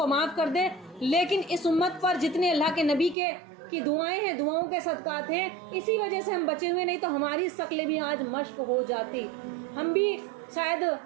معاف کر دے، لیکن اس امت پر جتنے اللہ کے نبی کی دعائیں ہیں، دعاؤں کے صدقات ہیں، اسی وجہ سے ہم بچے ہوئے، نہیں تو ہماری شکلیں بھی آج مشق ہو جاتی، ہم بھی شاید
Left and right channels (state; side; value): drops out; left; at 3.2 s